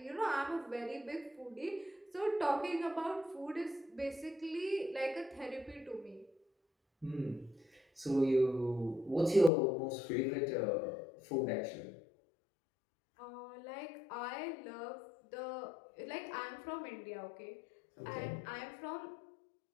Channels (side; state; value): right; drops out; at 9.5 s